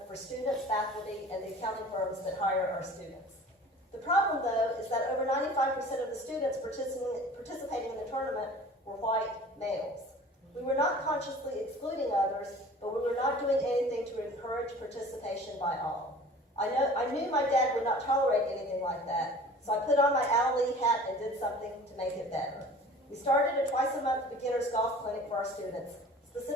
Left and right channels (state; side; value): normal; both; correlation 0.44